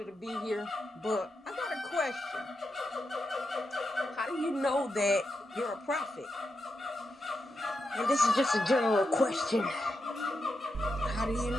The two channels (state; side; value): normal; both; correlation 0.86